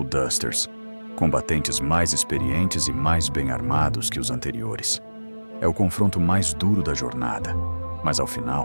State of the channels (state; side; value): inverted; both; correlation -1.00